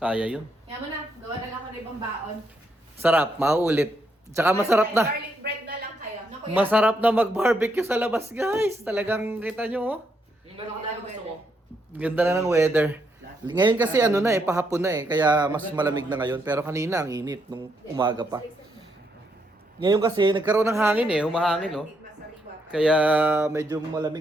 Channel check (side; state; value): both; normal; correlation 0.77